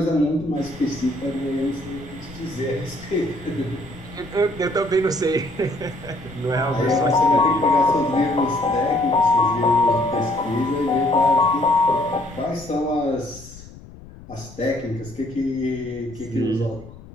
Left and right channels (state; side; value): noise; left; rumble, 18 dB below the sound